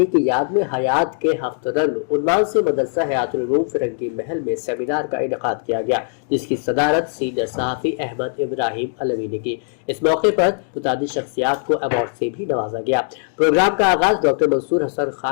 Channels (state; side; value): silent; right; 66 dB below the other